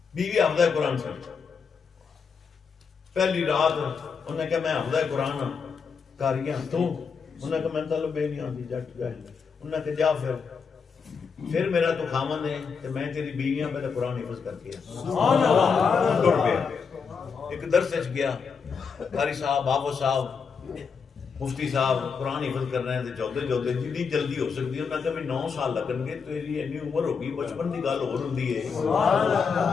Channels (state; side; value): quieter; right; 5.8 dB